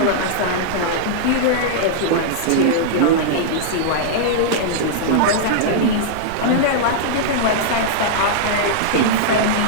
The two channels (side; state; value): both; different; correlation -0.02